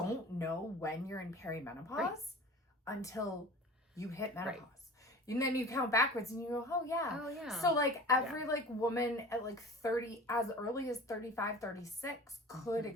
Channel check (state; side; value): normal; both; correlation 0.39